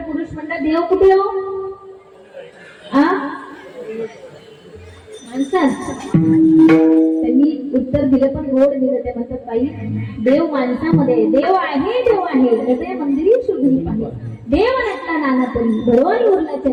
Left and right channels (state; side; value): identical; both; correlation 1.00